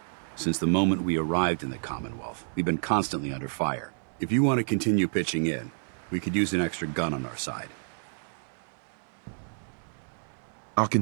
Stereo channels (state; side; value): silent; left; digital silence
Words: Since the moment we arrived in the Commonwealth, we've been constantly under fire. If you want to continue pitching in, we could use an extra gun on our side. I'll